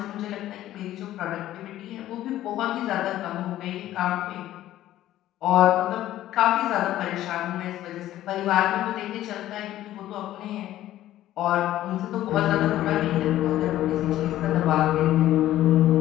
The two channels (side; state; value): right; quieter; 13.7 dB